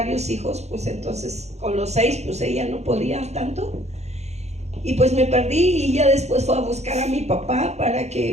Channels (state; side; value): late; left; 0.32 ms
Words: hijos, pues entonces con los 6, pues ella no podía tanto. Y pues me perdí, y ya después fue a buscar a mi papá para que